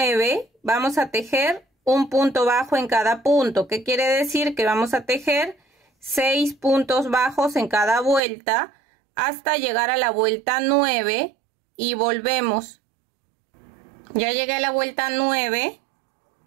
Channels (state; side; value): drops out; left; at 8.2 s